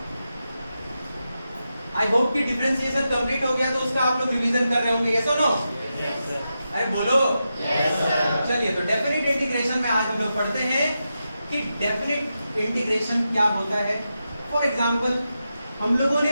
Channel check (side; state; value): both; inverted; correlation -0.88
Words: आई होप कि डिफरेंशिएशन कंप्लीट हो गया, तो उसका आप लोग रिवीजन कर रहे होंगे, यस और नो? अरे बोलो yes, चलिए, तो डेफिनेट इंटीग्रेशन में आज हम लोग पढ़ते हैं कि डेफिनेट इंटीग्रेशन क्या होता है। फॉर एग्जांपल, हम लोगों ने